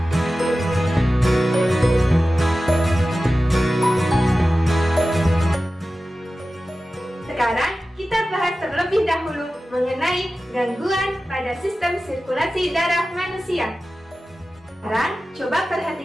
Sekarang kita bahas terlebih dahulu mengenai gangguan pada sistem sirkulasi darah manusia. Sekarang coba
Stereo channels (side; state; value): both; normal; correlation 0.95